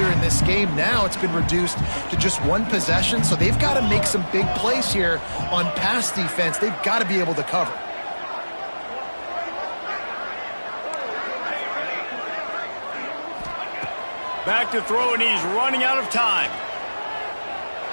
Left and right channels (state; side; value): inverted; both; correlation -1.00